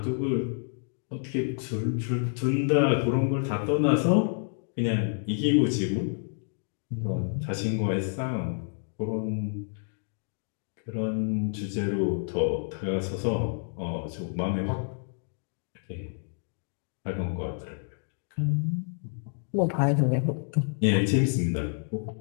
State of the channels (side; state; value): right; silent; 59 dB below the other